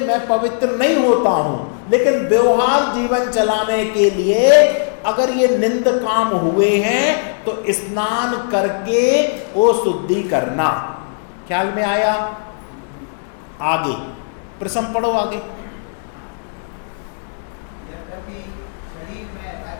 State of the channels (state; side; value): silent; right; 63 dB below the other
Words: मैं पवित्र नहीं होता हूं, लेकिन व्यवहार जीवन चलाने के लिए अगर ये निंद काम हुए हैं तो स्नान करके वो शुद्धि करना। ख्याल में आया? आगे प्रश्न पढ़ो आगे। शरीर में